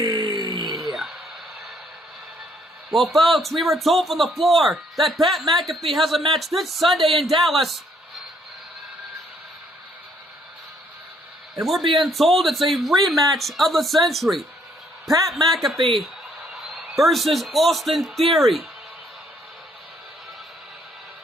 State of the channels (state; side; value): normal; both; correlation 0.68